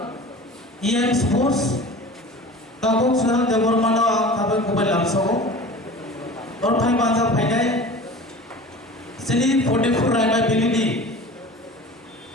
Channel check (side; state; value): both; normal; correlation 0.38